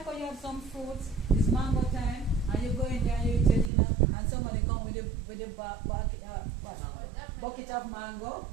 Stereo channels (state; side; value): drops out; left; at 3.7 s